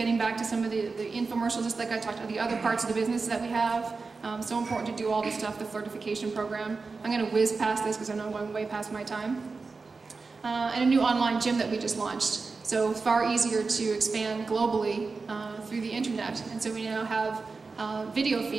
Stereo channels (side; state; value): left; quieter; 4.3 dB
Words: back to some of the infomercials, just like I talked about the other parts of the business that we have. So important to do all this stuff, the flirtification program. I'm going to whiz past this because I know I'm going way past my time. And a new online gym that we just launched. So far easier to expand globally through the internet. And so we now have video